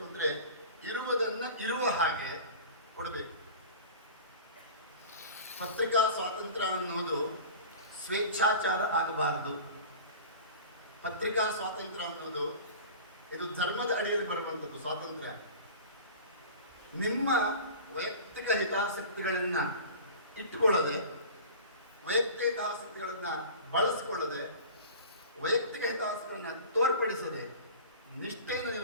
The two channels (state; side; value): inverted; both; correlation -0.38